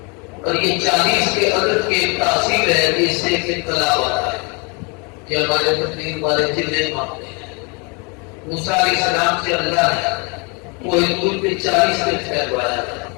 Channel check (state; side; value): quieter; right; 31.6 dB